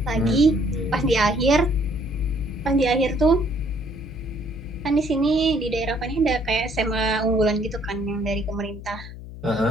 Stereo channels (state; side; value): noise; left; hum, 13 dB below the sound